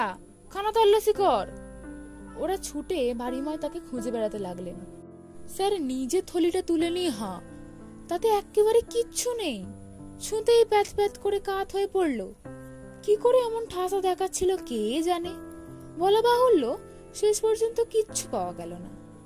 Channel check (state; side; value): identical; both; correlation 1.00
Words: খানা তল্লাশি কর। ওরা ছুটে বাড়িময় তাকে খুঁজে বেড়াতে লাগলেন। স্যার নিজে থলিটা তুলে নিয়ে হাঁ, তাতে একেবারে কিচ্ছু নেই। ছুঁতেই প্যাথ প্যাথ করে কাত হয়ে পড়ল। কি করে এমন ঠাসা দেখাচ্ছিল কে জানে। বলা বাহুল্য, শেষ পর্যন্ত কিচ্ছু পাওয়া গেল না,